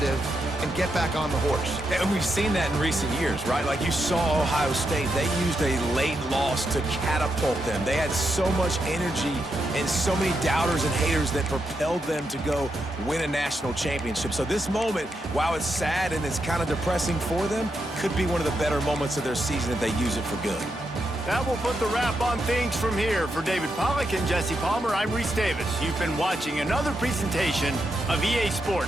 and get back on the horse? And we've seen that in recent years, right? Like you saw Ohio State, they used a late loss to catapult them. They had so much energy and so many doubters and haters that propelled them to go win a national championship. So this moment, while it's sad and it's kind of depressing for them, could be one of the better moments of their season if they use it for good. That will put the wrap on things from here. For David Pollack and Jesse Palmer, I'm Reese Davis. You've been watching another presentation of EA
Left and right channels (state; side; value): normal; both; correlation 0.83